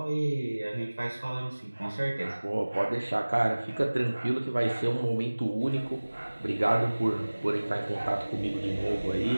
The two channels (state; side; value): inverted; both; correlation -1.00